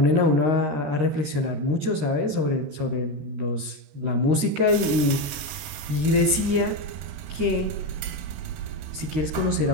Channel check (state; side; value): late; left; 13 ms